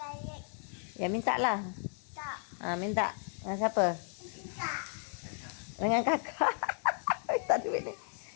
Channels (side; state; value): right; silent; 55 dB below the other